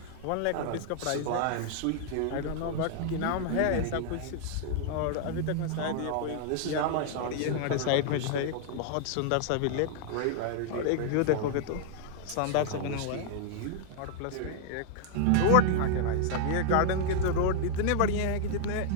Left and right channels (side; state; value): both; different; correlation 0.00